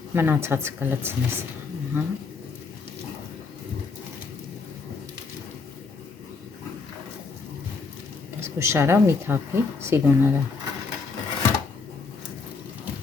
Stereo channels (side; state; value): right; quieter; 4.5 dB